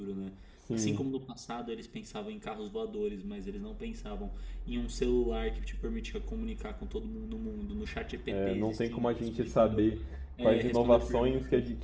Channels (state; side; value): identical; both; correlation 1.00